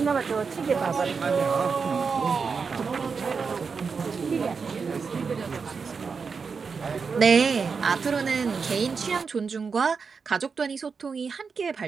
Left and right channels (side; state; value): left; quieter; 5.4 dB